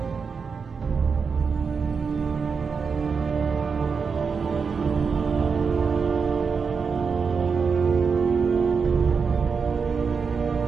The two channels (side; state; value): left; quieter; 5.5 dB